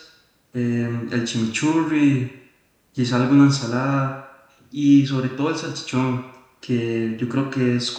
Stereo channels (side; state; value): both; identical; correlation 1.00